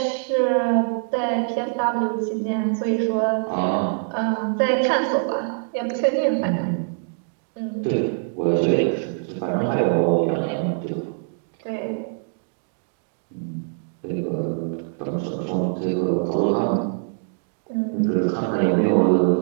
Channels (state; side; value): silent; left; digital silence